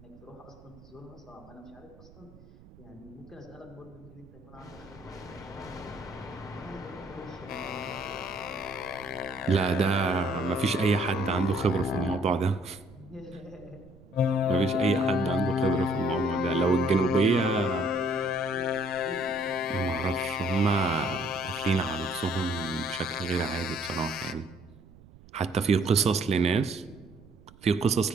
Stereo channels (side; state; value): right; noise; rumble, 23 dB below the sound